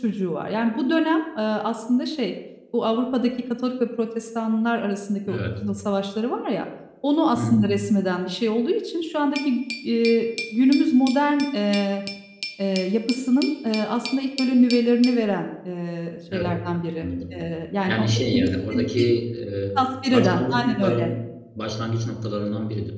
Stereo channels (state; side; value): identical; both; correlation 1.00